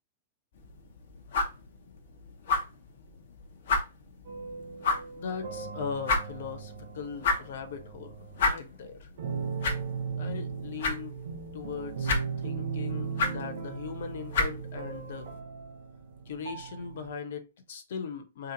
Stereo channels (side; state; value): both; inverted; correlation -0.46